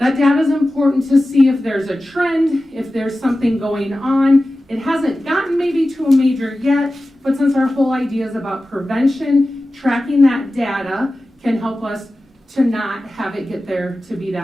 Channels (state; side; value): normal; both; correlation 0.95